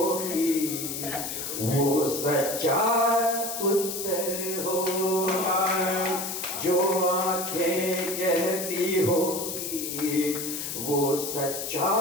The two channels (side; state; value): left; noise; hiss, 5 dB below the sound